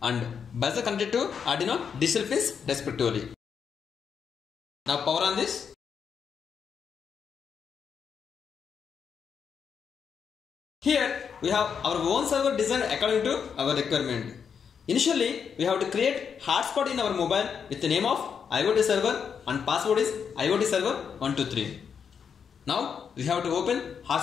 and buzzer connected to Arduino digital pins respectively. Now power on this. Here we have our own server designed according to our requirement. Initially we have to create hotspot in our mobile with the name of IOT server and password is IOT server 123. Now we have to open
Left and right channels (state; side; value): quieter; right; 6.9 dB